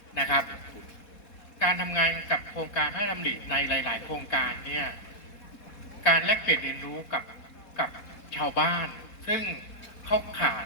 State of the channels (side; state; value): right; late; 4.2 ms